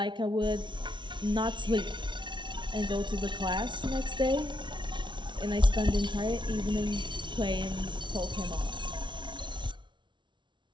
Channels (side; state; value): left; late; 0.23 ms